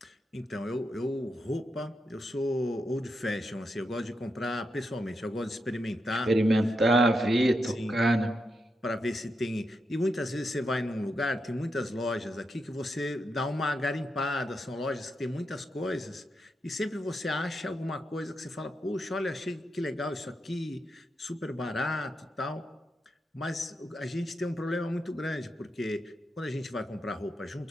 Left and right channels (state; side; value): normal; both; correlation 0.84